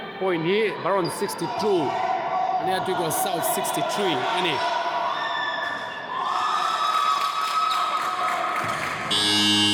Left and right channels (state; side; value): identical; both; correlation 1.00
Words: point hi Barons 62 ani Tuikual South 63 ani